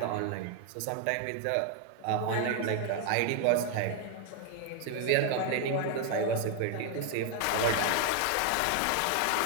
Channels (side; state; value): both; different; correlation 0.00